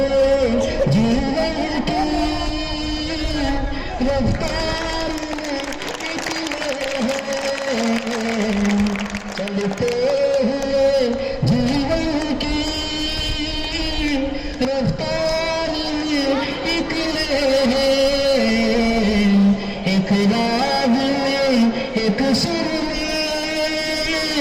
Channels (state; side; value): identical; both; correlation 1.00